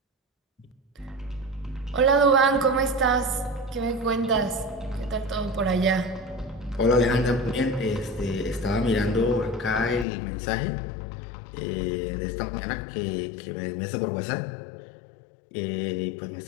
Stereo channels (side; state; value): right; drops out; at 10.1 s